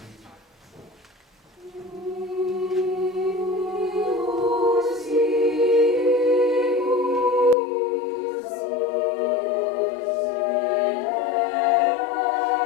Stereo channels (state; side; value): drops out; right; at 7.6 s